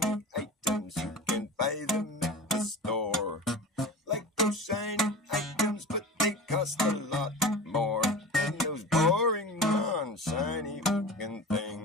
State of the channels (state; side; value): normal; both; correlation 0.33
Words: items. You can buy them at the store. Like those shiny items.